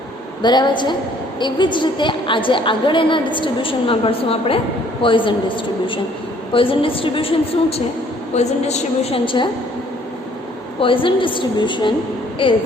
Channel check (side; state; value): both; normal; correlation 0.60